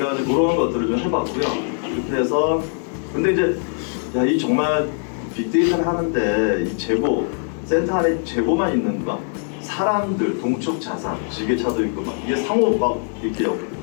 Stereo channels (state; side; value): silent; right; 55 dB below the other